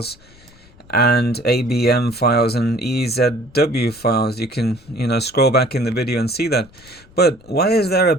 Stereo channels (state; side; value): noise; left; rumble, 26 dB below the sound